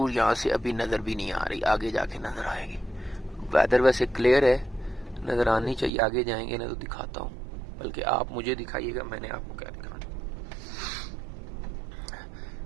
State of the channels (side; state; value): left; drops out; at 5.9 s